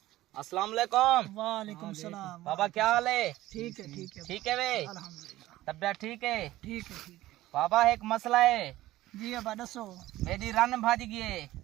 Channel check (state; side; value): quieter; left; 16.1 dB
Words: अस्सलाम वालेकुम। वालेकुम सलाम। बाबा क्या हाल है? ठीक है ठीक है ठीक है वे, अल्हम्दुलिल्लाह तबियत ठीक है? ठीक है ठीक है बाबा एक मसला है। जी अबा दसो मेरी रन भाज गई है।